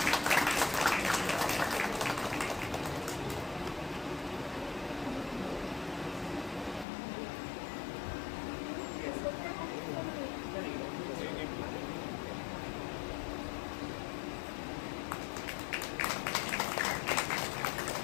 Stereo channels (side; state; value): right; drops out; at 6.9 s